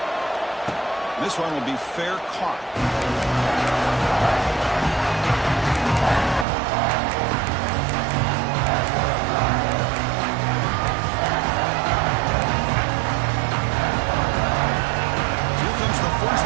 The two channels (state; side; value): drops out; left; at 6.5 s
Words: This one will be fair caught. Here comes the first